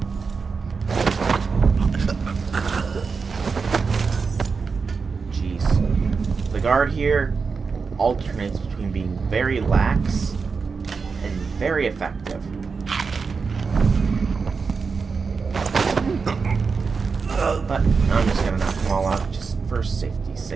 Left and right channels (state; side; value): quieter; left; 5.0 dB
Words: Jeez. The guard here alternates between being very lax and very effective. But I'm just gonna knock them all out just for safety's